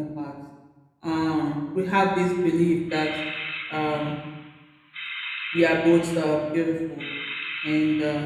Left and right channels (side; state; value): both; identical; correlation 1.00